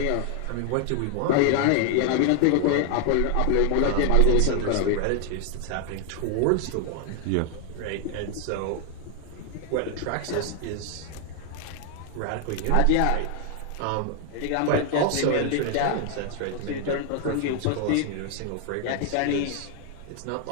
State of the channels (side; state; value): both; different; correlation 0.00